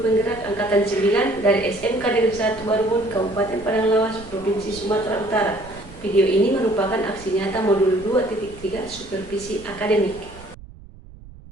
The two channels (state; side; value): noise; right; rumble, 19 dB below the sound